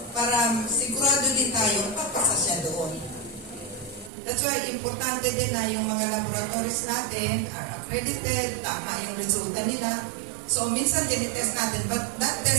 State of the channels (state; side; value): drops out; left; at 4.1 s